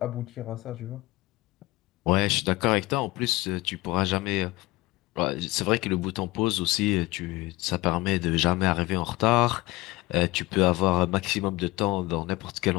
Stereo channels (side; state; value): right; quieter; 20.5 dB